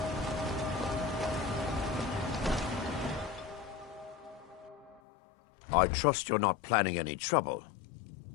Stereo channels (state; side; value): drops out; right; at 5.0 s